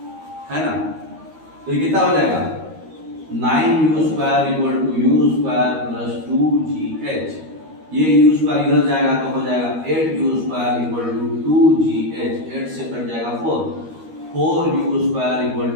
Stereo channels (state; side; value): late; left; 13 ms